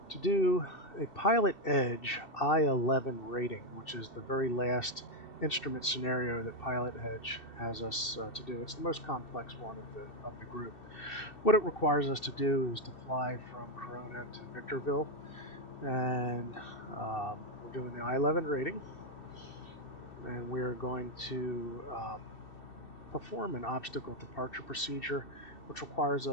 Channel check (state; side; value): late; right; 2.7 ms